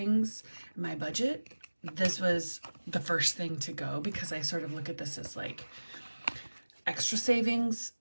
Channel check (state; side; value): inverted; both; correlation -1.00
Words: my budget, this was the first thing to go because I sort of look at this as like extra savings.